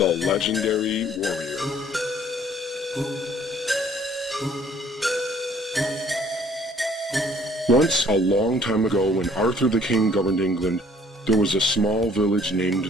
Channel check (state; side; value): normal; both; correlation 0.58